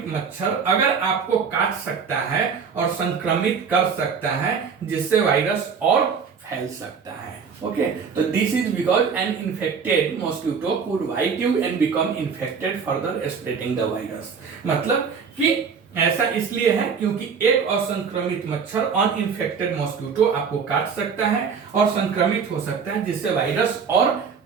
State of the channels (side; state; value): left; quieter; 6.1 dB